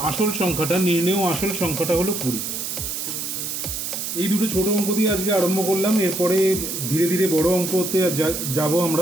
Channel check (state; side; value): noise; right; hiss, 4 dB below the sound